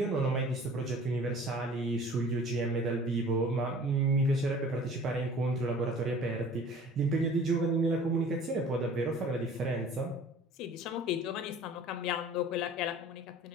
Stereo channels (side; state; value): both; normal; correlation 0.46